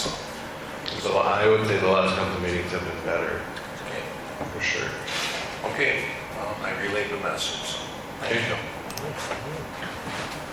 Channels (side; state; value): both; identical; correlation 1.00